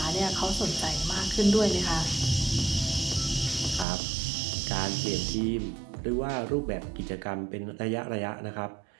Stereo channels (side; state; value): left; drops out; at 3.9 s